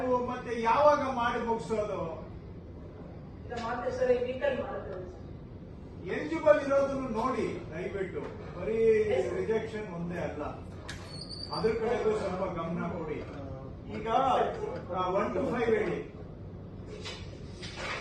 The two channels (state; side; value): identical; both; correlation 1.00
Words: ಮತ್ತೆ ಯಾವಾಗ ಮಾಡಿ ಮುಗಿಸೋದು? ಎಲಿಜಿಬಲ್ ಇರೋದನ್ನು ನೋಡಿ ದಯವಿಟ್ಟು. ಬರೀ ರಿಜೆಕ್ಷನ್ ಒಂದೇ ಅಲ್ಲ, ಅದ್ರ ಕಡೆಗೂ ಸ್ವಲ್ಪ ಗಮನ ಕೊಡಿ. ಈಗ 1 to 5 ಹೇಳಿ.